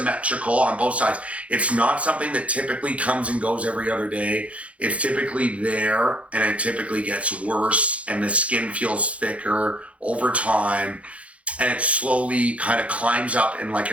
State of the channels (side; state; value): left; late; 0.064 ms